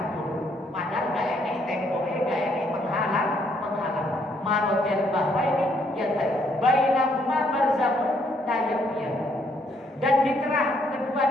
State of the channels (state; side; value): normal; both; correlation 0.69